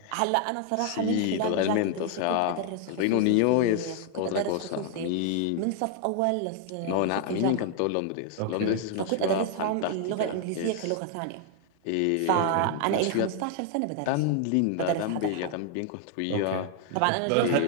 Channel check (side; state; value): both; different; correlation 0.00